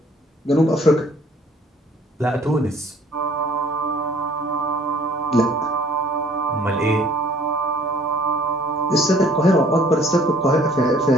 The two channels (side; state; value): both; normal; correlation 0.57